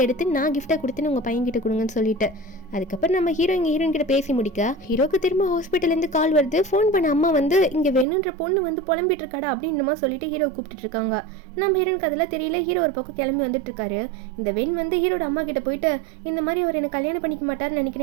எடுத்து நான் கிஃப்டா கொடுத்தேன்னு உங்க பையன் கிட்ட கொடுங்கன்னு சொல்லிட்டு. அதுக்கப்புறம் நம்ம ஹீரோயின் கிட்ட பேசி முடிக்க ஹீரோக்கு திரும்ப ஹாஸ்பிட்டல் இருந்து கால் வருது. ஃபோன் பண்ண அம்மா வந்து இங்க வேணுன்ற பொண்ணு வந்து புலம்பிட்டு இருக்காடா அப்படின்னு சொல்லிட்டு ஹீரோ கூப்பிட்டு இருக்காங்க. நம்ம ஹீரோனுக்கு அதெல்லாம் தெரியல. ஹீரோ ஒரு பக்கம் கிளம்பி வந்துட்டு இருக்காரு. இந்த வெண் வந்து ஹீரோட அம்மா கிட்ட போயிட்டு இந்த மாதிரி அவர் எனக்கு கல்யாணம் பண்ணிக்க மாட்டாருன்னு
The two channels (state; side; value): drops out; left; at 8.1 s